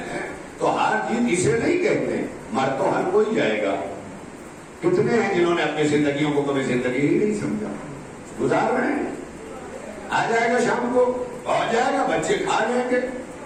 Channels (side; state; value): both; identical; correlation 1.00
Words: تو ہار جیت اسے نہیں کہتے، مر تو ہر کوئی جائے گا۔ کتنے ہیں جنہوں نے اپنی زندگیوں کو کبھی زندگی ہی نہیں سمجھا، گزار رہے ہیں، آ جائے گا شام کو، پہنچ جائے گا، بچے کھا لیں گے۔